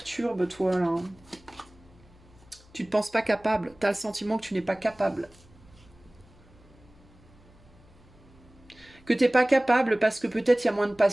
toi, là? Tu ne te penses pas capable. Tu as le sentiment que tu n'es pas capable. Que tu n'es pas capable parce que peut-être il y a moins de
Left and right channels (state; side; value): noise; left; hum, 26 dB below the sound